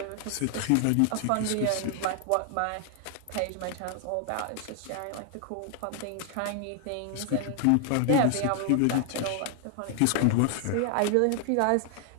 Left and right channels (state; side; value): different; both; correlation 0.00